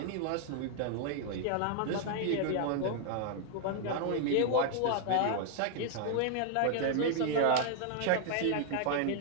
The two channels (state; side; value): different; both; correlation 0.00